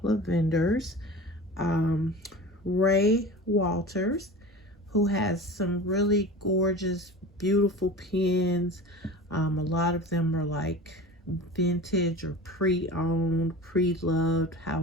of vendors. Ray Walters, who has some really gorgeous, beautiful pens. A lot of them are like vintage or pre-owned, pre-loved,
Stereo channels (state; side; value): normal; both; correlation 0.35